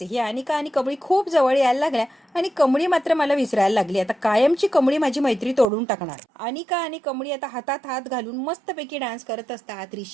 आहे. ही अनिका आणि कमळी खूप जवळ यायला लागल्या आणि कमळी मात्र मला विसरायला लागली. आता कायमची कमळी माझी मैत्री तोडून टाकणार. अनिका आणि कमळी आता हातात हात घालून मस्तपैकी डान्स करत असतात.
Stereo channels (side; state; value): left; drops out; at 5.7 s